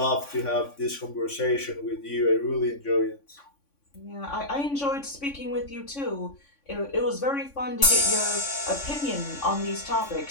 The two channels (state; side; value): late; right; 3.5 ms